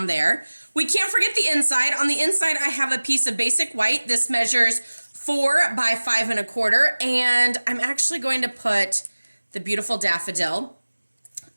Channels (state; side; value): inverted; both; correlation -1.00